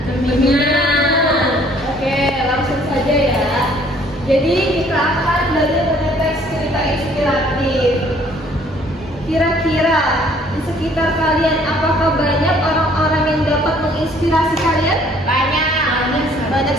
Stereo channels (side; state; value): both; normal; correlation 0.59